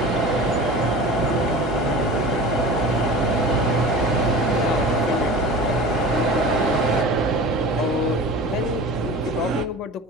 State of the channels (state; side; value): normal; both; correlation 0.35